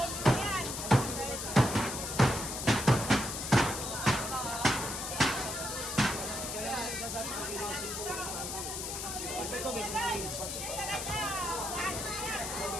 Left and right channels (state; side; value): noise; left; hiss, 5 dB below the sound